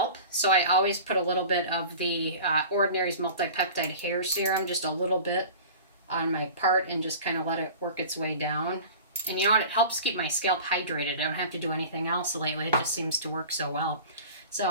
so I always put a little bit of the Ordinary's Multi-Peptide Hair Serum, just a little bit on my part, and just kind of let it work its way down. And you know what? It helps keep my scalp hydrated. I don't have to do anything else lately. It just seems to work so well.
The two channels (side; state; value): both; inverted; correlation -0.39